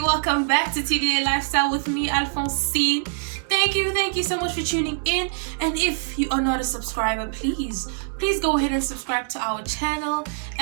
welcome back to TDA Lifestyle with me, Alphonsine. Thank you so much for tuning in. And if you are not a subscriber, please go ahead and subscribe to our channel.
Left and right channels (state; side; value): silent; left; digital silence